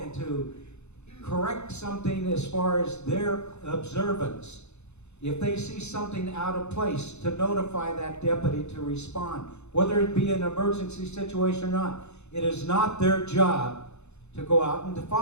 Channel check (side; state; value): right; late; 0.81 ms